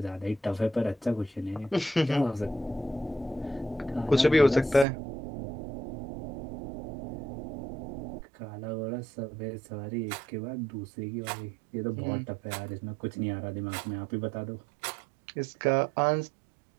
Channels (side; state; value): left; drops out; at 4.9 s